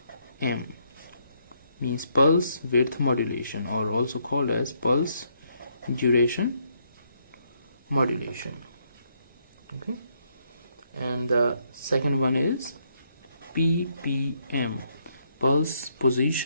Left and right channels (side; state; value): both; inverted; correlation -0.74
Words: means pulse width modulation, or also called as pulse duration modulation. Okay, and the second one is PPM, pulse